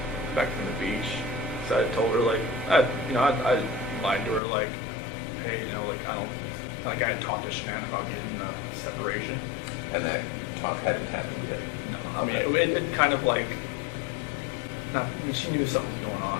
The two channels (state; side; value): drops out; right; at 4.4 s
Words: the beach. So I told her like I lied to her like, hey, like I had talked to Shanann about getting a separation. And that talk hadn't happened yet? No, I mean it kind of like she knew something was going